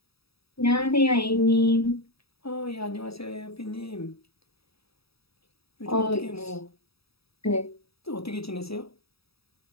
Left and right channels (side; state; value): right; late; 0.77 ms